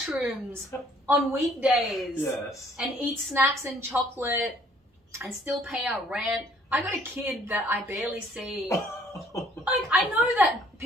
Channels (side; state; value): both; normal; correlation 0.61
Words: on weekdays. Yes. And eat snacks and chocolate and still pay our rent. I got a kid that I barely see. Like, I know that